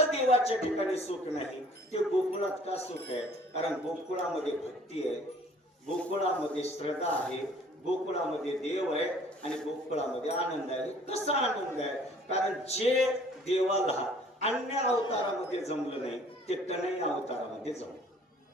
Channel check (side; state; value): both; normal; correlation 0.54